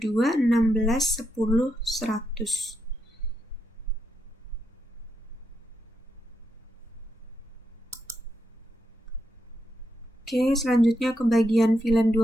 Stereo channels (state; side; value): normal; both; correlation 0.82